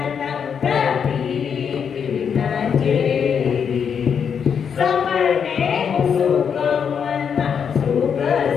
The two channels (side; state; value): right; quieter; 7.2 dB